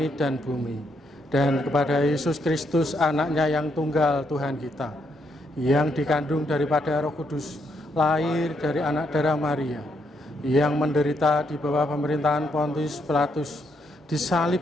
dan bumi, dan kepada Yesus Kristus, anaknya yang tunggal Tuhan kita, yang dikandung daripada Roh Kudus, lahir dari anak darah Maria, yang menderita di bawah pemerintahan Pontius Pilatus,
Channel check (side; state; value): both; normal; correlation 0.77